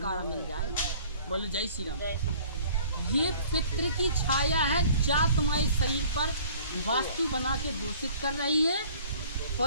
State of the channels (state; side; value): inverted; both; correlation -0.51